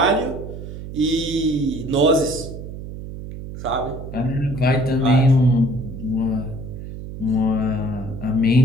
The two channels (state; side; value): noise; right; hum, 10 dB below the sound